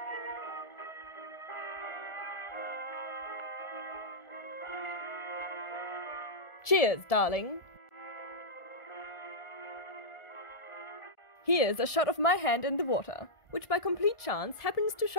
Cheers, darling. Here's a shot of my hand in the water, which by complete chance happens to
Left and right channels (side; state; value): right; late; 1.4 ms